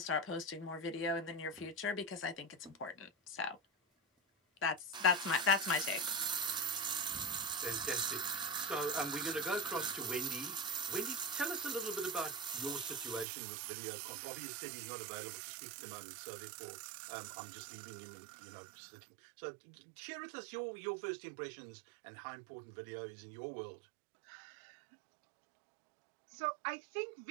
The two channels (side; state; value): left; drops out; at 13.2 s